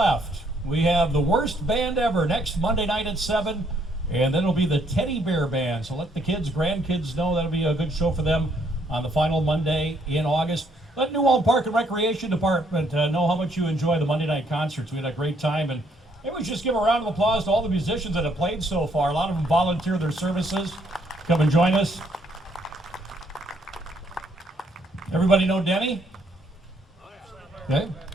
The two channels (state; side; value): normal; both; correlation 0.69